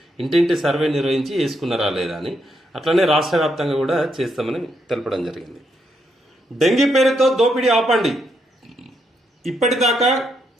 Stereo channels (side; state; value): both; normal; correlation 0.78